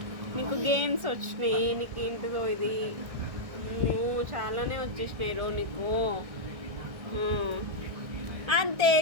నీకు గేమ్స్ వచ్చినాయి. నీకు ఏంటిదో ఇది? చాలానే వచ్చేసినాయి నీకు. అంతే.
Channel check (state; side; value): late; left; 1.6 ms